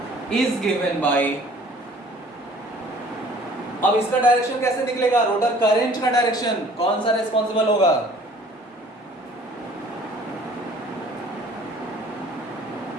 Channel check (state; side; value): normal; both; correlation 0.53